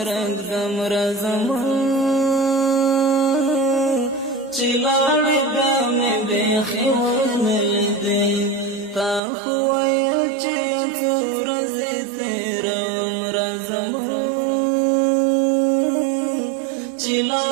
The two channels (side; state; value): left; drops out; at 9.2 s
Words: ږدم راځمه چې لاړې بیا مې بیخي ونه لیدې تا خو ویل چې یو څو ورځې تېروم راځمه چې